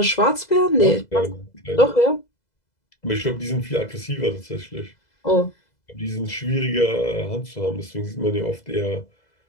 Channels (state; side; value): late; right; 2.0 ms